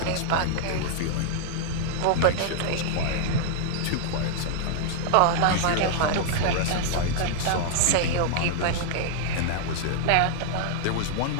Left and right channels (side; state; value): both; different; correlation -0.01